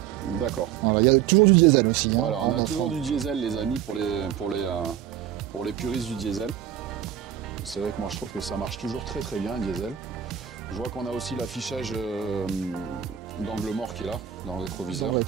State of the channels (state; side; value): quieter; left; 10.0 dB